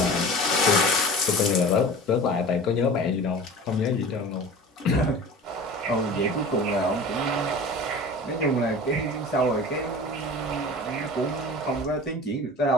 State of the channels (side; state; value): both; normal; correlation 0.38